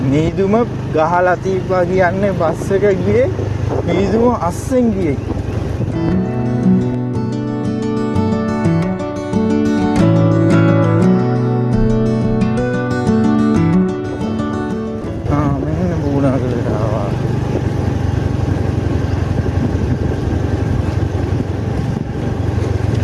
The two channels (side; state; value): both; identical; correlation 1.00